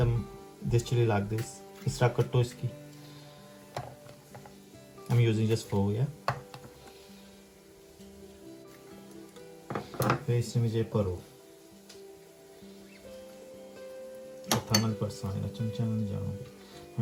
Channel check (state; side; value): identical; both; correlation 1.00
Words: this chili like this. इस तरह कटो इसकी. I'm using just 4, yeah. फिर इसमें मुझे परो. थामल पर साने चमचा में जाऊंगी.